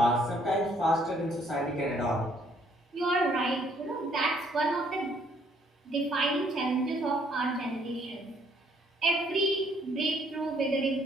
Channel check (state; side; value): normal; both; correlation 0.65